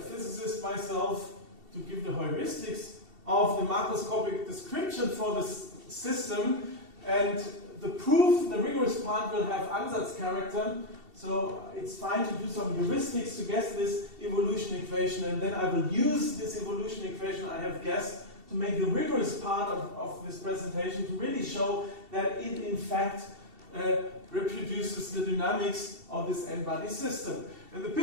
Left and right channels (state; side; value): late; left; 2.7 ms